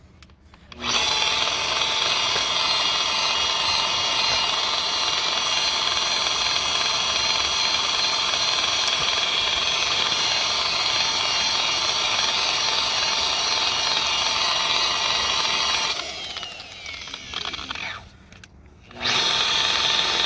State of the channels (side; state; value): both; identical; correlation 1.00